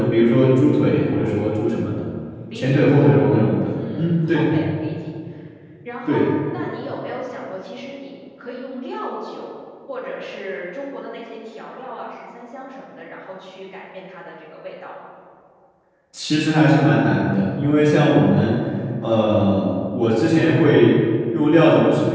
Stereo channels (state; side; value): identical; both; correlation 1.00